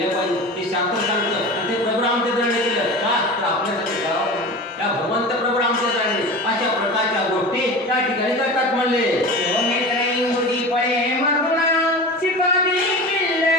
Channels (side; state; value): both; normal; correlation 0.32